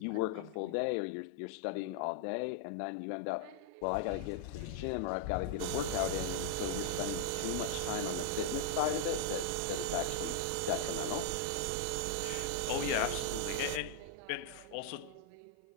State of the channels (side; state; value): both; different; correlation -0.01